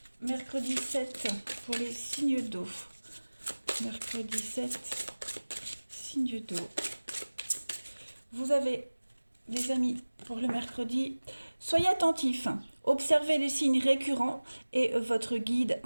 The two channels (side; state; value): both; inverted; correlation -1.00